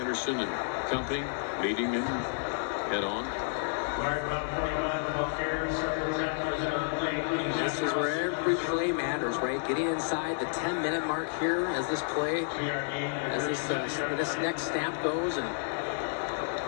and company meeting him head on. This is where every play matters, right? Getting inside the 10-minute mark here as this play, as this next snap goes, and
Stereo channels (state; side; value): silent; right; digital silence